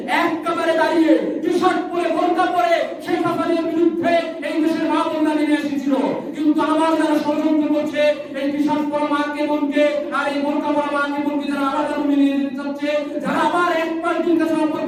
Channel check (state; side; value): identical; both; correlation 1.00